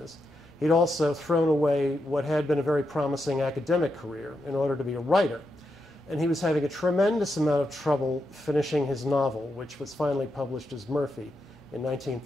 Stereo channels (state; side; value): normal; both; correlation 0.85